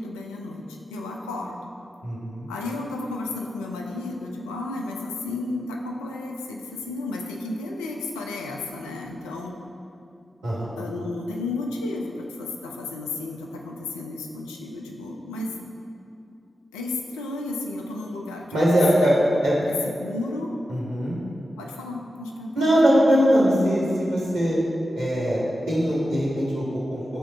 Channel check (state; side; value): normal; both; correlation 0.88